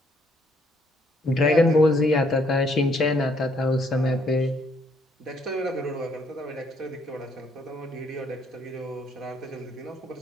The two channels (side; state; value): both; normal; correlation 0.68